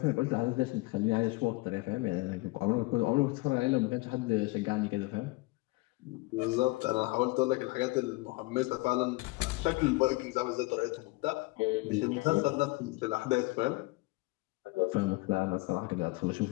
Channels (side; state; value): right; quieter; 23.2 dB